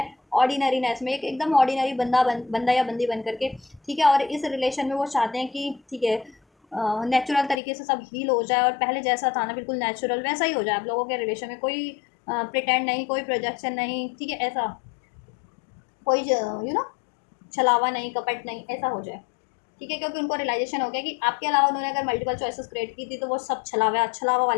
ऑर्डिनरीनेस में एकदम ऑर्डिनरी बंदा या बंदी बन करके, ठीक है, और इस रिलेशन में वो चाहते हैं कि, ठीक है, नेचुरल तरीके से सब हील हो जाए, और पहले जैसा था ना बिल्कुल नेचुरल वैसा ही हो जाए आप लोगों के रिलेशन में, कोई प्रिटेंड नहीं, कोई प्रोजेक्शन नहीं, ठीक है, ऐसा कोई छलावा नहीं, कपट नहीं, ऐसा हो जाए। ठीक है, क्योंकि उनको रियलाइजेशन हो गया कि आपके अलावा उन्होंने अगर मल्टीपल चॉइसेस क्रिएट की थी तो वो सब छलावा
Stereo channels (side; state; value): right; drops out; at 7.6 s